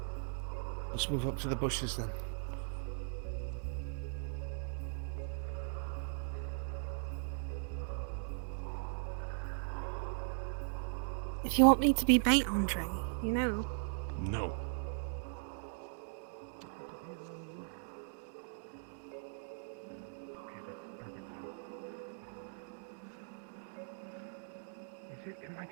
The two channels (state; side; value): silent; left; digital silence